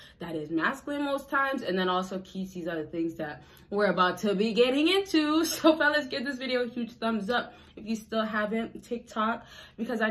That is masculine most times, and then also keeps these other things that we're about to be getting into. So fellas, give this video a huge thumbs up if you still haven't. TikTok, because I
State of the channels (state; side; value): identical; both; correlation 1.00